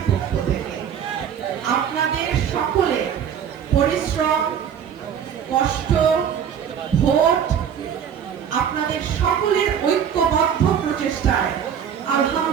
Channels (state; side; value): quieter; left; 8.3 dB